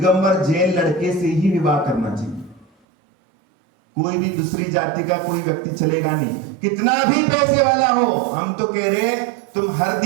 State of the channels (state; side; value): drops out; left; at 2.7 s